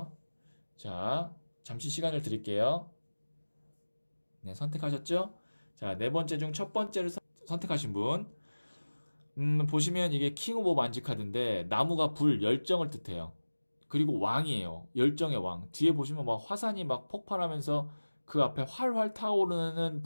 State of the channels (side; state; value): both; inverted; correlation -1.00